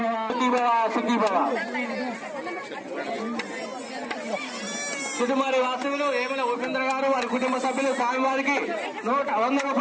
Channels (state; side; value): identical; both; correlation 1.00